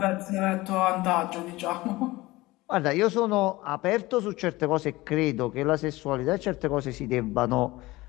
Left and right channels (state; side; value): quieter; right; 19.9 dB